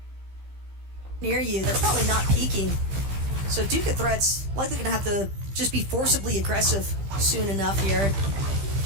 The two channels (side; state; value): left; late; 15 ms